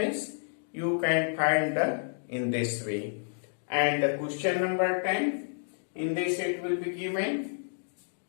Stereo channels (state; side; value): silent; right; digital silence